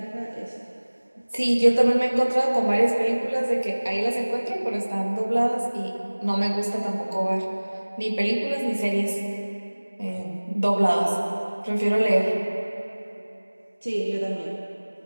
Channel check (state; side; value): inverted; both; correlation -1.00